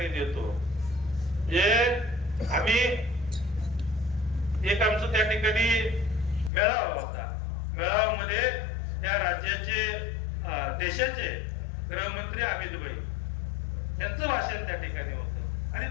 देतो. जे आम्ही एक आमचं त्या ठिकाणी मेळावा होता. मेळाव्यामध्ये या राज्याचे देशाचे गृहमंत्री अमित भाई यांचं भाषण त्या ठिकाणी होतं आणि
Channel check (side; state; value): right; drops out; at 6.5 s